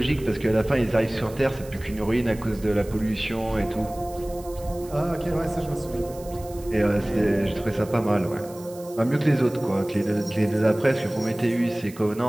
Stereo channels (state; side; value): noise; right; hiss, 20 dB below the sound